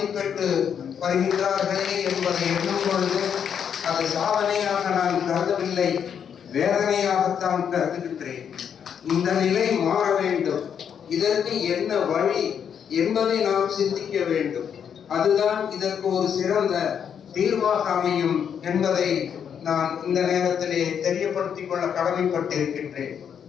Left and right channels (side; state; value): right; quieter; 7.9 dB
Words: வருகின்றார்களே என்பதை எண்ணும் பொழுது அது சாதனையாக நான் கருதவில்லை, வேதனையாகத்தான் கருதுகின்றேன். இந்த நிலை மாற வேண்டும். இதற்கு என்ன வழி என்பதை நாம் சிந்திக்க வேண்டும். அதுதான் இதற்கு ஒரு சிறந்த தீர்வாக அமையும் என்பதை நான் இந்த நேரத்திலே தெரியப்படுத்திக் கொள்ள கடமைப்பட்டிருக்கின்றேன்.